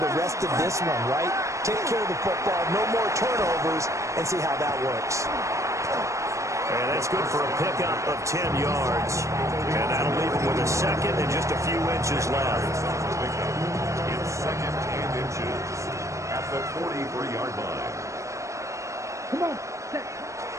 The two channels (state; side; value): late; left; 0.15 ms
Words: rest of this one, right? Take care of the football, no more turnovers, and see how that works. And that's good for a pickup of 10 yards. And that'll leave him with a 2nd and just a few inches left. It's 2nd and inches at the 43-yard line. Come on.